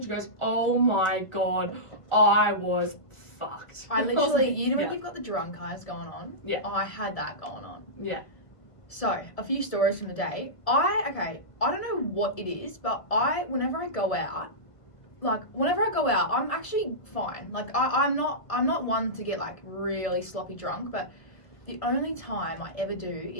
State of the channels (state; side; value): late; right; 1.5 ms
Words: she goes, "Oh my god, I was fucked." I was literally, like, you know when yeah. you've got the drunk eyes going on? Yeah. I had that going on. Yeah. So, a few stories from the day. I don't know what it is, but whenever I go out, I'm actually fine. Like, I'm not one to get, like, really sloppy drunk, but the only time I ever do